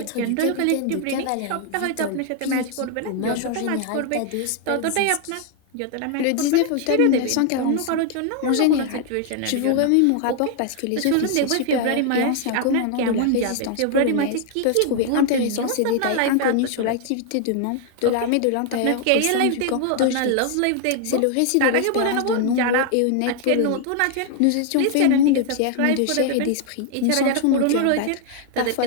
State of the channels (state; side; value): different; both; correlation 0.00